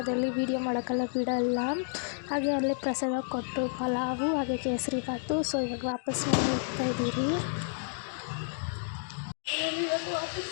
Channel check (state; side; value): silent; right; digital silence